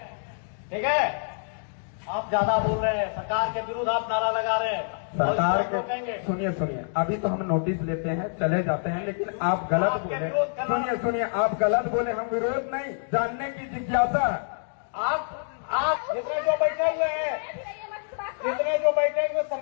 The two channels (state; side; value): silent; right; digital silence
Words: ठीक है? आप ज्यादा बोल रहे हैं, सरकार के विरुद्ध आप नारा लगा रहे हैं, सरकार के। सुनिए, अभी तो हम नोटिस लेते हैं, चले जाते हैं, लेकिन आप गलत बोले। सुनिए, आप गलत बोले। हम विरोध नहीं, जानने की जिज्ञासा। आप जितने जो बैठे हुए हैं,